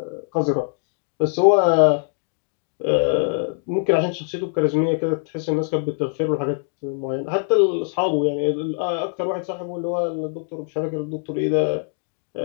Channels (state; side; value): silent; right; digital silence